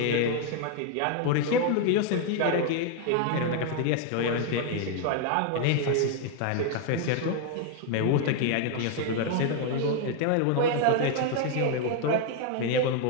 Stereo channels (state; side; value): different; both; correlation 0.00